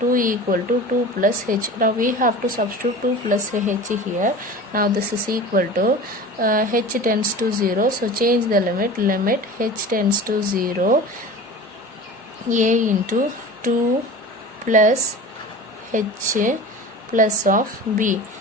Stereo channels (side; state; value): both; normal; correlation 0.36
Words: equal to 2 plus h. Now we have to substitute 2 plus h here. Now this is equal to h tends to 0. So change the limit h tends to 0, a into 2 plus h plus of b.